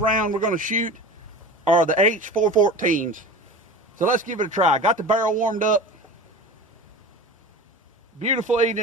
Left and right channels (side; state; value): both; normal; correlation 0.34